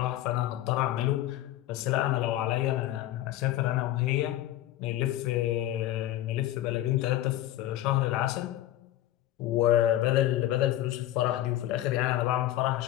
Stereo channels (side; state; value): right; quieter; 13.8 dB